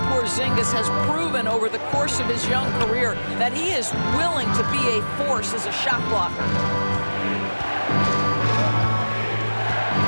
Porzingis has proven over the course of his young career that he is willing to be a force as a shot blocker.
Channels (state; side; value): inverted; both; correlation -1.00